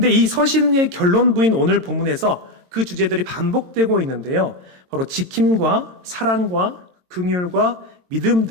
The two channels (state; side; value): late; left; 22 ms